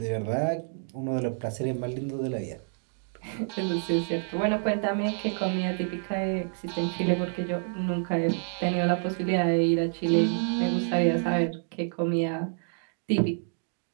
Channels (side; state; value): left; silent; digital silence